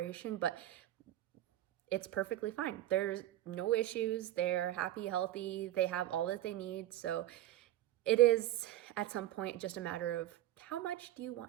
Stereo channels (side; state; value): left; quieter; 13.7 dB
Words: but it's perfectly fine. There's no issues. They're happy, healthy. They have all that they need. So it is at some point just a matter of how much do you